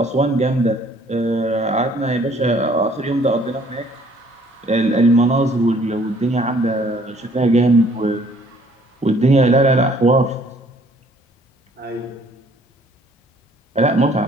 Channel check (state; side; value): normal; both; correlation 0.59